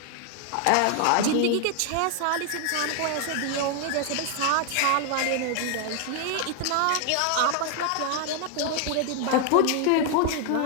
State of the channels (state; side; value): different; both; correlation 0.00